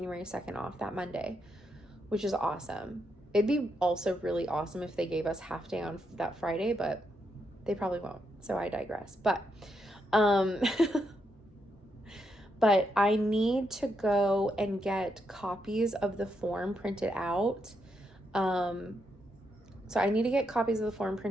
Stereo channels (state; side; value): normal; both; correlation 0.80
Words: 2nd off, that Monday, which is awesome. It'd be also really awesome if they gave us half day on that Friday, but they probably won't. So I digress. But but I need to go and get copies of the form printed out. So I need to get copies of the form